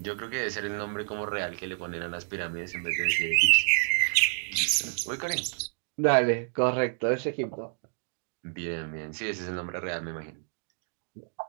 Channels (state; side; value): silent; left; digital silence